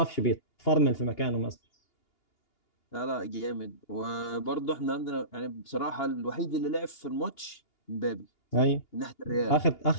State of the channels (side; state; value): right; late; 2.8 ms